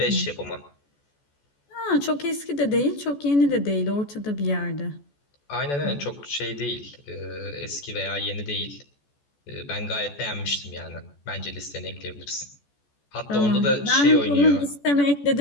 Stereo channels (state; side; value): late; right; 14 ms